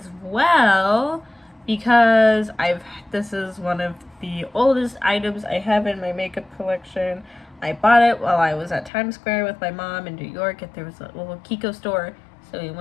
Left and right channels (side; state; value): right; drops out; at 8.9 s